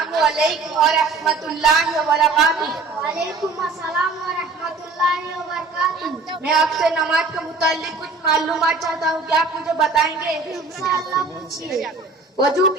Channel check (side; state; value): left; quieter; 3.8 dB